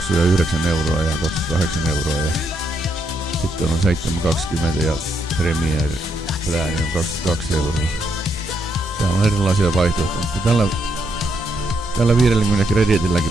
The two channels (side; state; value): both; normal; correlation 0.77